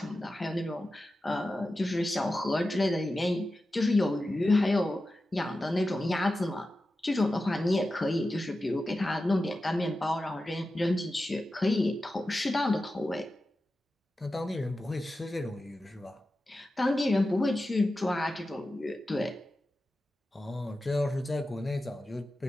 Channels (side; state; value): both; normal; correlation 0.93